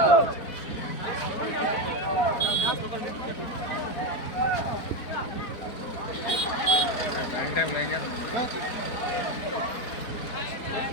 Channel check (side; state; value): right; late; 4.5 ms